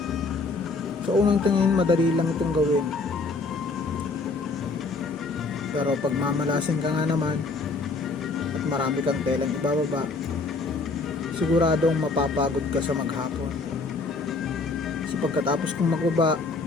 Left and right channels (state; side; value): quieter; right; 3.7 dB